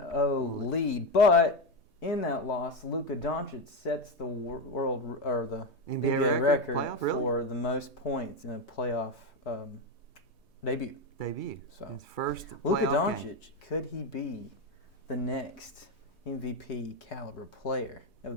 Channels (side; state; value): right; late; 3.2 ms